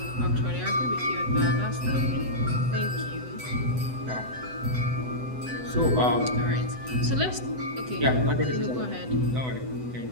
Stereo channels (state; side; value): late; left; 7.9 ms